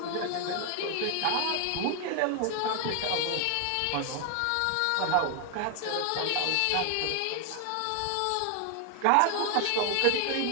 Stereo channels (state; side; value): different; both; correlation 0.00